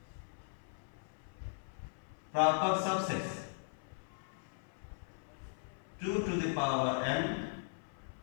proper subsets 2 to the power n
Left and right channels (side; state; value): right; silent; 52 dB below the other